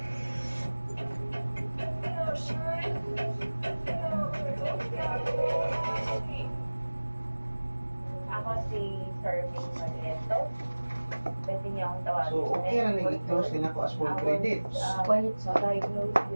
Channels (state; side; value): inverted; both; correlation -1.00